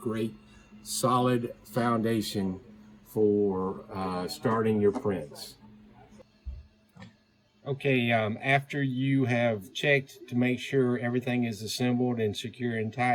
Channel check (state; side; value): identical; both; correlation 1.00